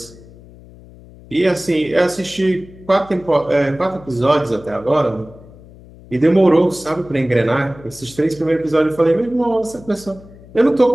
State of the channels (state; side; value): noise; left; hum, 21 dB below the sound